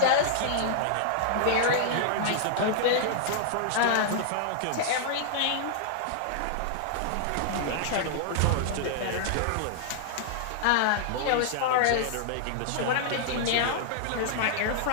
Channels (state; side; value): different; both; correlation -0.01